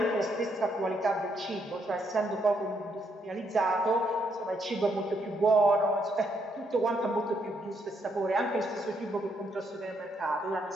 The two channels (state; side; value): normal; both; correlation 0.75